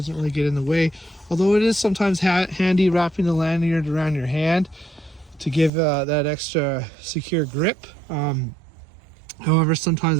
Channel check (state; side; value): drops out; left; at 5.7 s